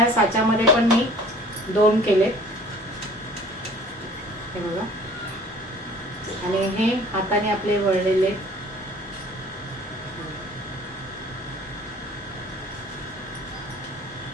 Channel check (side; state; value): both; normal; correlation 0.50